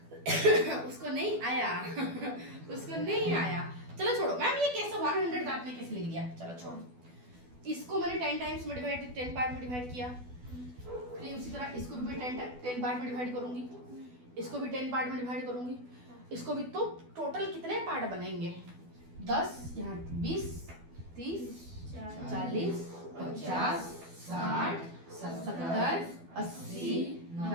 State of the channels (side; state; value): left; late; 12 ms